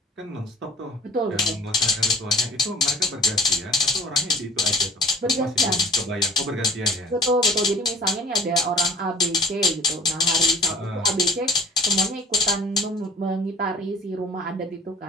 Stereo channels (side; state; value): both; normal; correlation 0.47